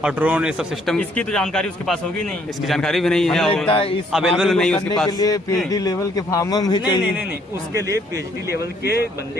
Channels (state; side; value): normal; both; correlation 0.66